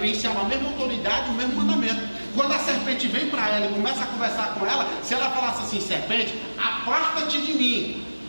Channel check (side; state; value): both; inverted; correlation -1.00